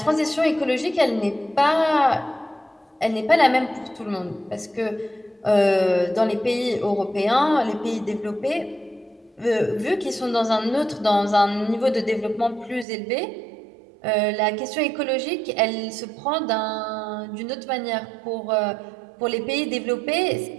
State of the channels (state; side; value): drops out; left; at 12.9 s